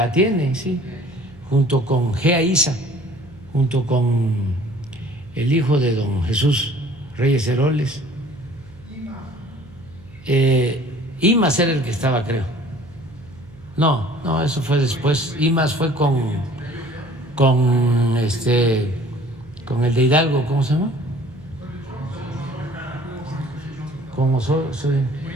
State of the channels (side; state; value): right; noise; hum, 22 dB below the sound